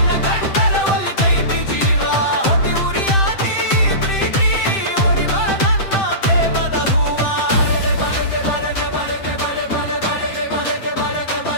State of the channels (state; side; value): late; right; 7.7 ms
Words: ಕಂಡರ ಒಳಿತೈತಿ ಜೀವ. ಹೊಡಿ ಉರಿಯಾತಿ ಪ್ರೀತಿ ಓಡಿ ಬಾ ನನ್ನ ಪ್ರೇಮದ ಹೂವ.